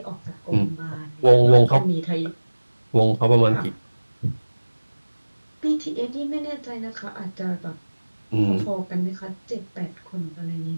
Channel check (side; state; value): both; inverted; correlation -1.00